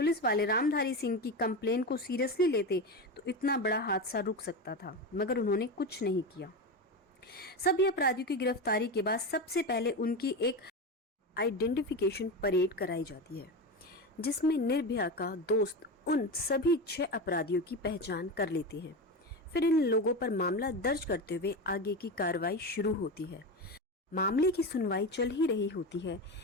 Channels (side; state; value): both; normal; correlation 0.20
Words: वाले रामधारी सिंह की कंप्लेन को सीरियसली लेते तो इतना बड़ा हादसा रुक सकता था, मगर उन्होंने कुछ नहीं किया। सभी अपराधियों की गिरफ्तारी के बाद सबसे पहले उनकी एक आइडेंटिफिकेशन परेड कराई जाती है जिसमें निर्भया का दोस्त उन सभी 6 अपराधियों की पहचान कर लेते हैं। फिर इन लोगों पर मामला दर्ज करते हुए आगे की कार्रवाई शुरू होती है। मामले की सुनवाई चल ही रही होती है